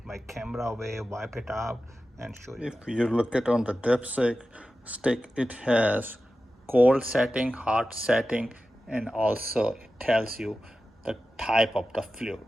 my camera away, wipe it out, and show you. If you look at on the dipstick stick, it has cold setting, hot setting, and also it tells you the type of the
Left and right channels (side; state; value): both; normal; correlation 0.94